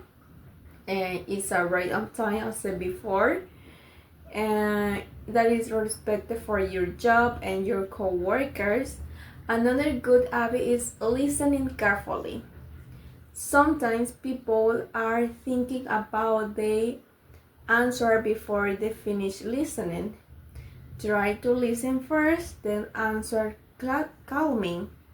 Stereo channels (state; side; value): identical; both; correlation 1.00